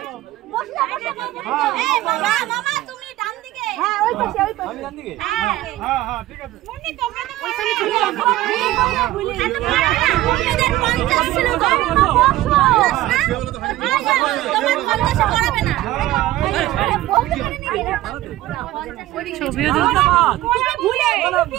মামা মামা তুমি ডান দিকে হ্যাঁ ওই পাশে ওই পাশে ডান দিকে হ্যাঁ হ্যাঁ ঠিক আছে মুন্নি তোমরা তো ওইখানে ছিল তোমাদের 50 ছিল তো তোমার 50 পড়াবে না ছবিও তো ভুলে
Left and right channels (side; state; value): left; quieter; 15.8 dB